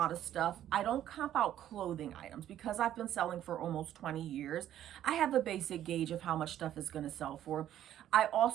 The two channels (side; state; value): left; quieter; 11.6 dB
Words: of stuff. I don't comp out clothing items because I've been selling for almost 20 years. I have a basic gauge of how much stuff is going to sell for. I